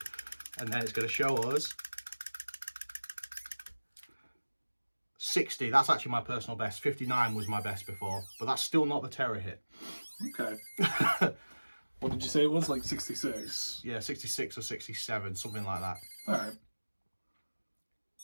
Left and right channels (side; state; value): both; inverted; correlation -1.00